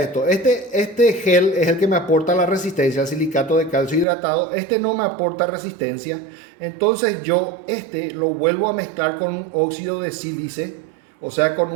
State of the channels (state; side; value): drops out; left; at 4.0 s